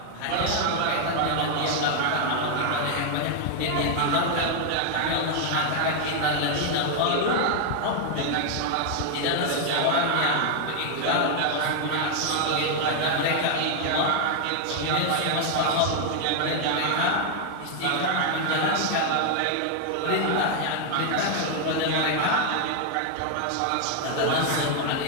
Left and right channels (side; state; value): both; different; correlation 0.00